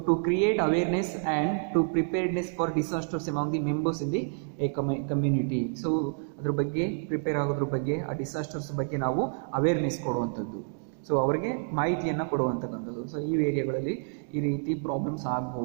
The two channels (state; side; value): silent; left; digital silence